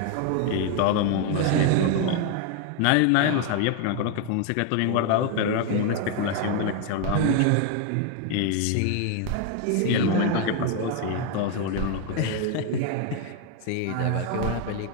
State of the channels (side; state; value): both; different; correlation 0.01